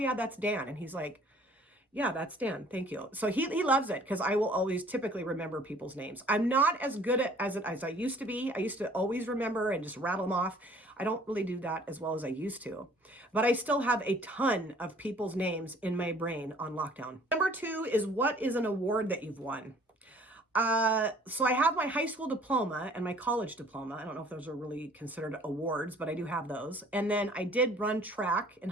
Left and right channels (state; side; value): normal; both; correlation 0.54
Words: that's Dan. And he's like, yeah, that's Dan. Thank you. So he loves it because I will always typically remember people's names. I'm not as good at as I used to be. I used to always remember and just rattle them off. I don't really do that as well as I used to, but I still have a ton of people's names in my brain on lockdown. Number 2 is, what is an award that you've won? So I have my high school diploma and my college diploma. I don't know if those are really considered awards, but I do have those. And then I did run track in